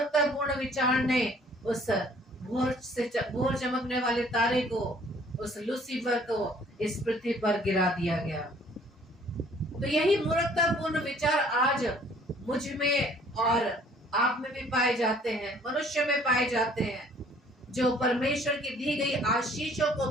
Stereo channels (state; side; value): normal; both; correlation 0.57